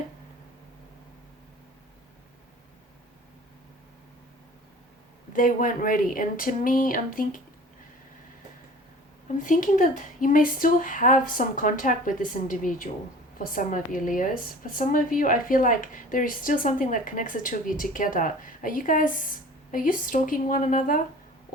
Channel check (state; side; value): normal; both; correlation 0.43